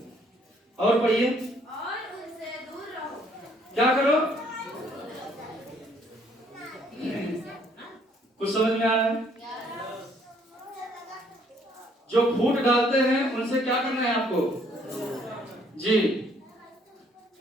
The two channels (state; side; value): normal; both; correlation 0.64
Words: और पढ़िए, क्या करो? कुछ समझ में आ रहा है? जो फूट डालते हैं उनसे क्या करना है आपको? जी,